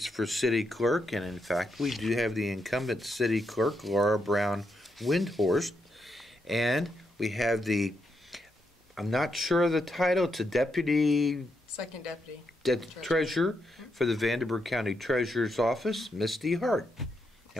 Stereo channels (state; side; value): normal; both; correlation 0.81